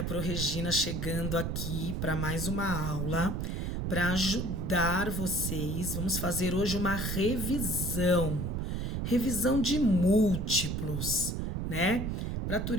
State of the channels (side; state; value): right; noise; rumble, 2 dB below the sound